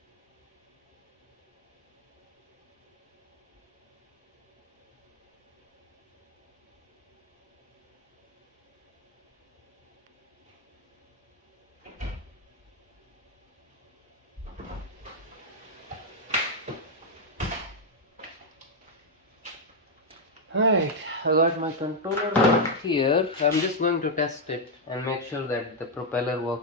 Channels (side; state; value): both; normal; correlation -0.01